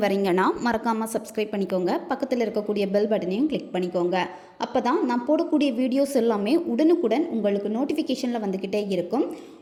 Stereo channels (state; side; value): identical; both; correlation 1.00